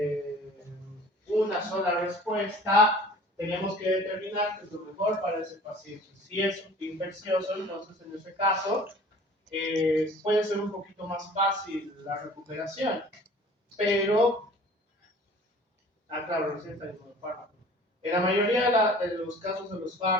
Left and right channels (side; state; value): both; normal; correlation 0.47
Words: una sola respuesta, tenemos que determinar qué es lo mejor para ese paciente. Si es infeccioso, entonces en ese caso puede ser un poquito más fácil la recuperación, pero, claro, receta y fármaco. En la mayoría de los casos de los